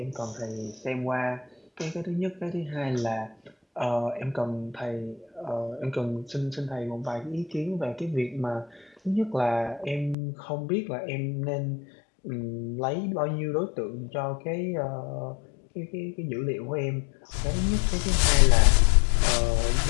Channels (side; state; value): right; drops out; at 10.2 s